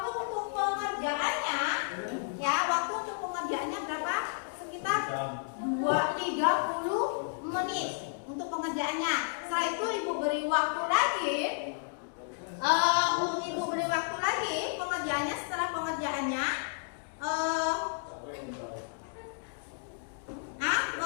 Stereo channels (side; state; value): right; silent; digital silence